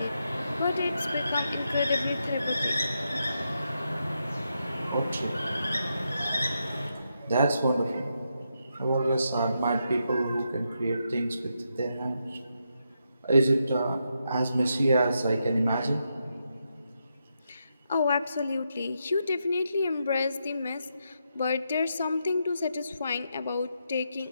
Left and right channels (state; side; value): inverted; both; correlation -0.83